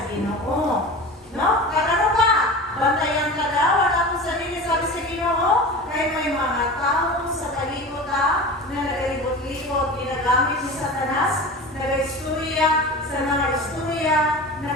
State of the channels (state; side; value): normal; both; correlation 0.33